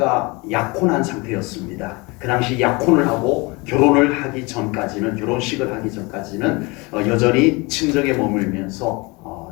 약혼한 상태였습니다. 그 당시 약혼을 하고 결혼식을 하기 전까지는 여전히 친정에 머물면서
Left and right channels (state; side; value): quieter; right; 26.2 dB